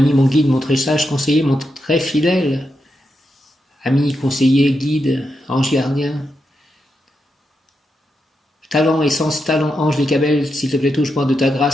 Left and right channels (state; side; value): normal; both; correlation 0.86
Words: mon guide, mon très sage conseiller, mon très fidèle ami, conseiller, guide, ange gardien. talent, essence, talent, ange, les cabelles, s'il te plaît, touche-moi de ta